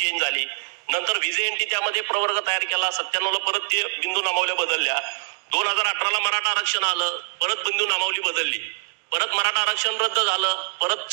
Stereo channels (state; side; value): silent; left; digital silence